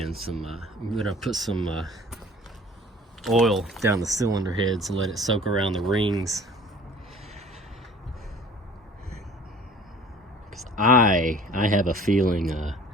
some I'm gonna put some oil down the cylinder heads and let it soak around the rings, because I have a feeling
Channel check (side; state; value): both; normal; correlation 0.49